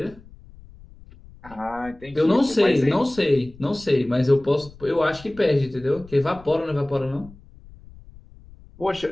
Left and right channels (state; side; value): noise; left; rumble, 22 dB below the sound